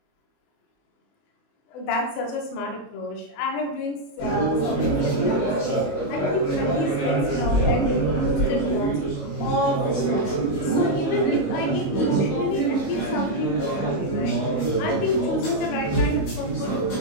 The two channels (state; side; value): late; right; 22 ms